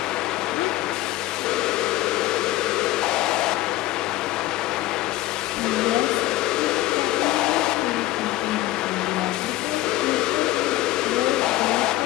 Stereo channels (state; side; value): quieter; right; 16.2 dB